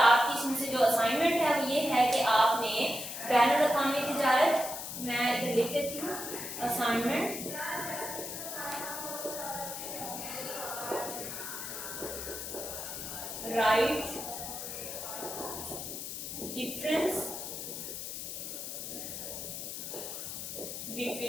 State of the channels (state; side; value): noise; left; hiss, 7 dB below the sound